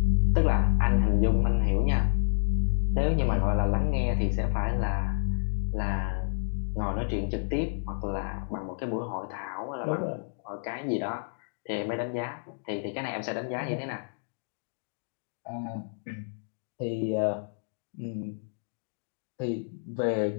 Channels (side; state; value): right; silent; digital silence